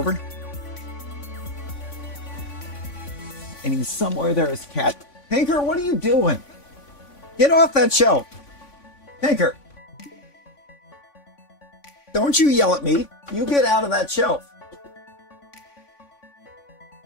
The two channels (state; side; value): late; right; 3.5 ms